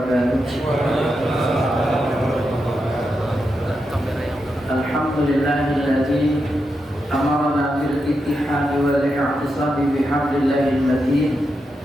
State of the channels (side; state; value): both; normal; correlation 0.86